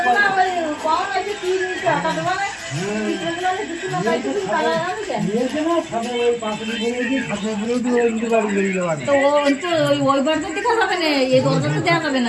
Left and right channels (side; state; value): both; identical; correlation 1.00